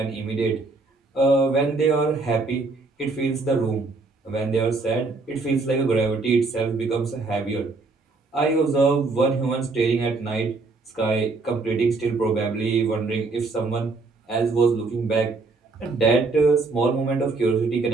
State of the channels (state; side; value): quieter; left; 3.7 dB